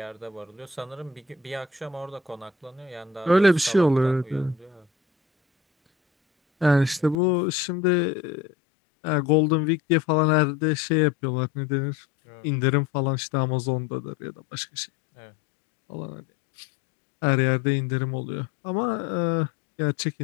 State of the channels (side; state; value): right; drops out; at 7.2 s